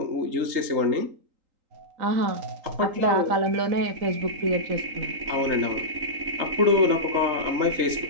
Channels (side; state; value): left; late; 3.8 ms